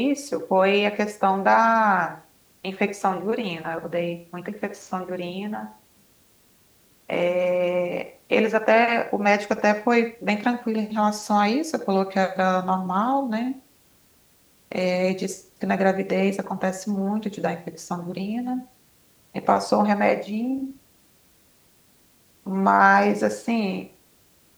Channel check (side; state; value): both; identical; correlation 1.00